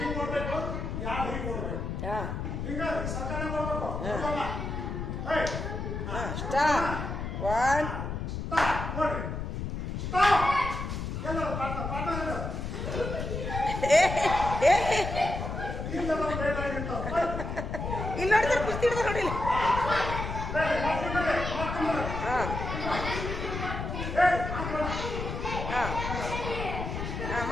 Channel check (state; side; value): noise; left; rumble, 4 dB below the sound